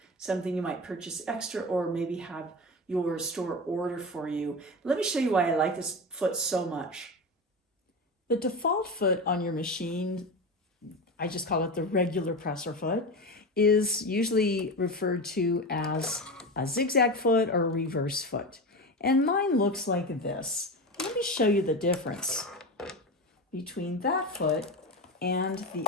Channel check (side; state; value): both; normal; correlation 0.22